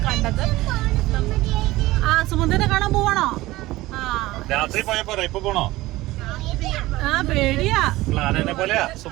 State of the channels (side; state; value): left; quieter; 18.3 dB